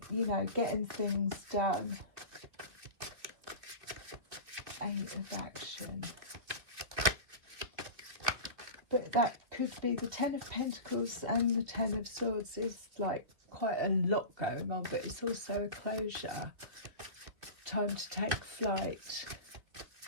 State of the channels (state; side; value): late; left; 2.2 ms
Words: you know, getting things done. 8 of action. But that could be the 10 of Pentacles and the 10 of Swords is like quite a lot going on, but it's also a closure. Time to take flight.